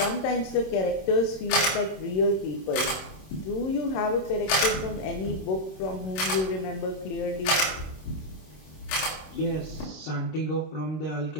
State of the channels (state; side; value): late; right; 26 ms